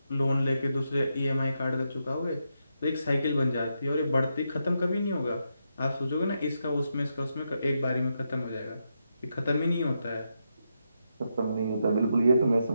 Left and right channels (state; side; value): inverted; both; correlation -0.83